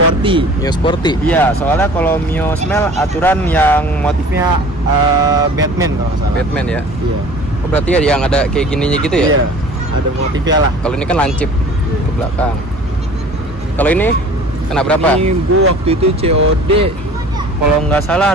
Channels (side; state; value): both; normal; correlation 0.45